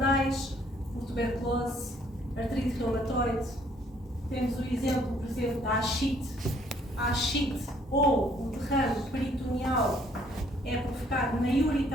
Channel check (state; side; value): normal; both; correlation 0.63